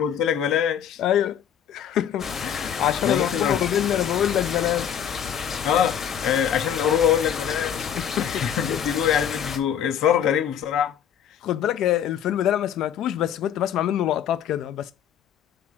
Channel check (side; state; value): right; quieter; 9.2 dB